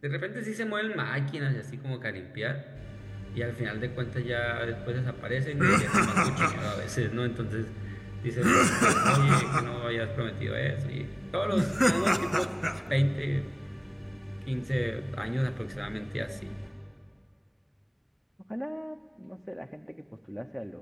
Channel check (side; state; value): both; identical; correlation 1.00